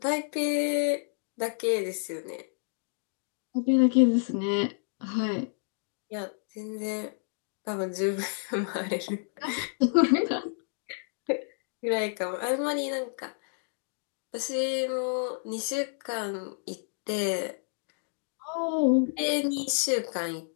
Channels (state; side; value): silent; right; digital silence